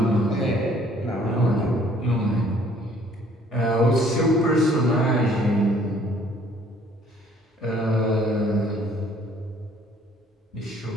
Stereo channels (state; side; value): normal; both; correlation 0.59